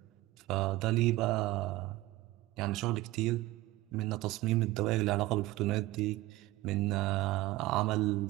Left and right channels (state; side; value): quieter; left; 18.0 dB